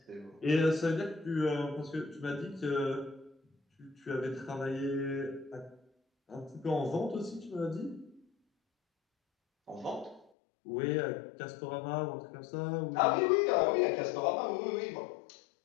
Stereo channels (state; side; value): drops out; right; at 10.2 s